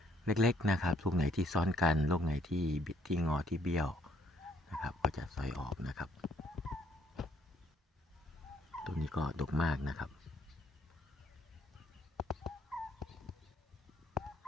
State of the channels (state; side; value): normal; both; correlation 0.66